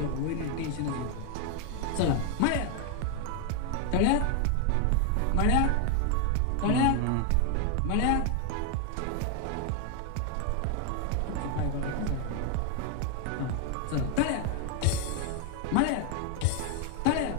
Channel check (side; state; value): both; different; correlation 0.00